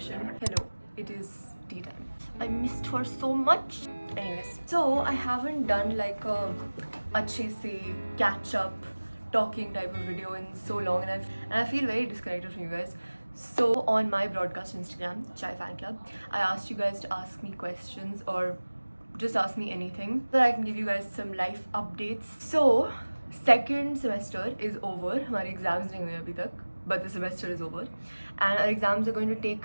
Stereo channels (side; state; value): both; inverted; correlation -1.00